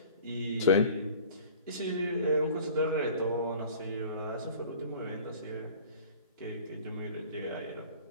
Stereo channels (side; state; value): both; inverted; correlation -0.44